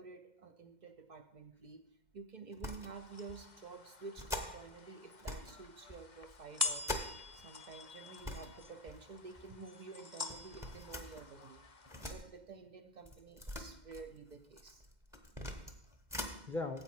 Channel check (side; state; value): left; late; 2.1 ms